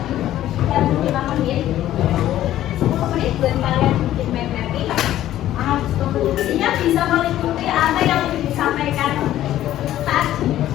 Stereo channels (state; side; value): quieter; right; 13.1 dB